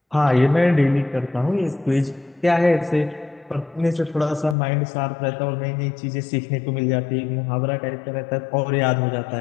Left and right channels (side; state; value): right; drops out; at 4.5 s